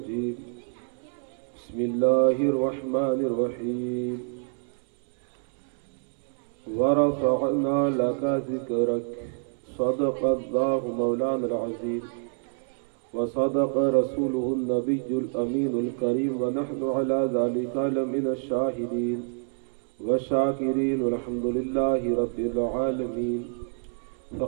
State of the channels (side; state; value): left; silent; 60 dB below the other